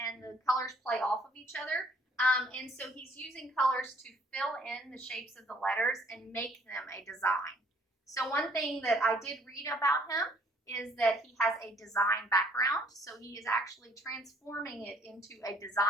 the colors play off of each other. And so he's using colors to fill in the shapes of the letters and make them a design. So one thing that I did read about him is that he has a design background. So he is actually transforming it into a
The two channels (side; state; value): both; normal; correlation 0.61